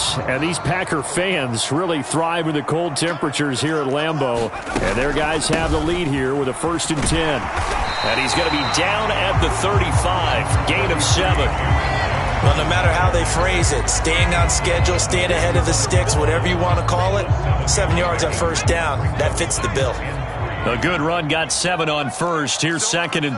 and these Packer fans really thrive in the cold temperatures here at Lambeau. And their guys have the lead here with a 1st and 10. And he's going to be down at the 35. Gain of 7. Well, no matter how they phrase it, staying on schedule, staying ahead of the sticks, whatever you want to call it, 7 yards on first down, that fits the bill. A good run, got 7 on first. Here's 2nd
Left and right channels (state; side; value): identical; both; correlation 1.00